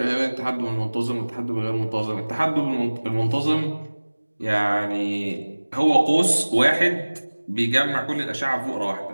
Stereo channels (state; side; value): inverted; both; correlation -1.00